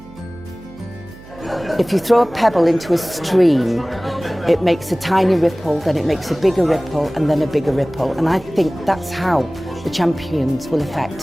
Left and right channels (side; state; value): right; noise; hum, 20 dB below the sound